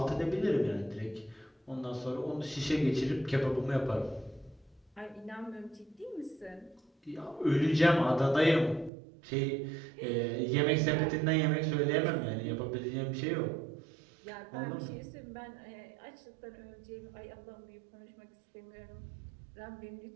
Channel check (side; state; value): left; drops out; at 8.9 s